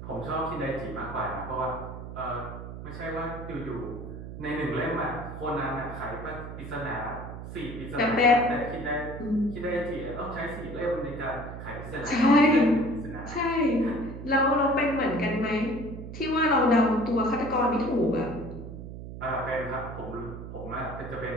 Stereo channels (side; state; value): right; noise; hum, 10 dB below the sound